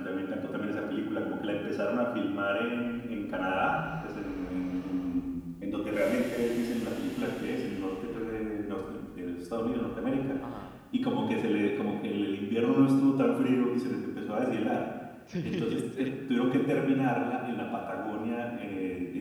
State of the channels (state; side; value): identical; both; correlation 1.00